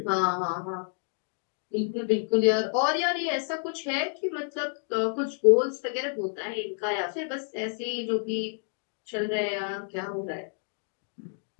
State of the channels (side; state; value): right; silent; 59 dB below the other